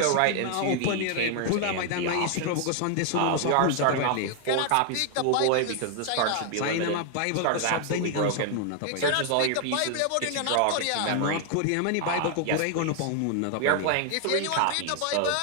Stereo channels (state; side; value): different; both; correlation 0.00